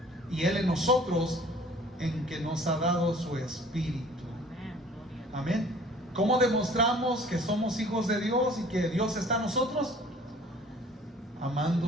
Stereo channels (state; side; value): normal; both; correlation 0.51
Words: y Él en nosotros, en que nos ha dado su Espíritu. Amén. ¿Cómo demostramos que somos hijos de Dios y que Dios está en nosotros?